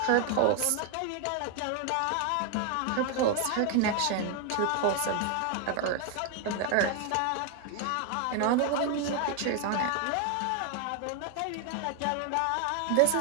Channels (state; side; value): different; both; correlation 0.01